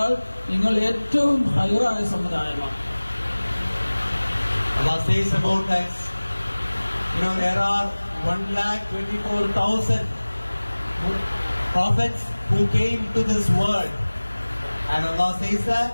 നിങ്ങൾ ഏറ്റവും ഖൈറായ സമുദായമാണ്. Allah says about us, there are 1,24,000 prophets who came to this world. And Allah says that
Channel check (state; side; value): inverted; both; correlation -1.00